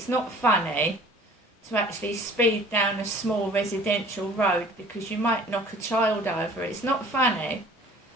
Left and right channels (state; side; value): normal; both; correlation 0.49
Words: not funny to actually speed down a small residential road because you might knock a child over. It's not funny.